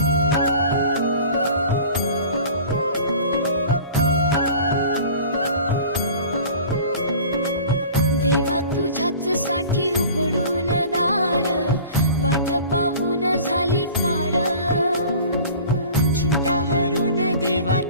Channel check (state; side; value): inverted; both; correlation -0.43